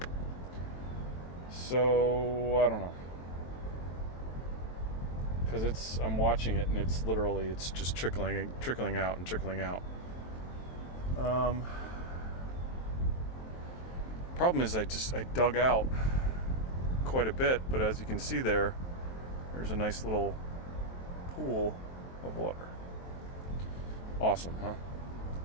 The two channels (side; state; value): right; late; 23 ms